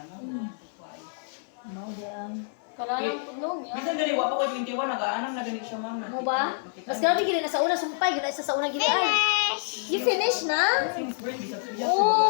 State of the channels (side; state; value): right; silent; 60 dB below the other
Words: no? Kuhay. Mao di ang. Kalalang punong yan. Bisan gani, wapo ko 21, nag-aanam na gani siya, ma'am. Mo ba? Mas grabe gid na sa una sumpay, gid sa una gid ay. You finish na?